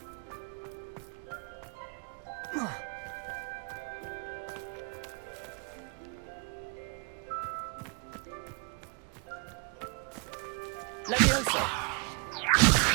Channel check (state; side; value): quieter; left; 36.1 dB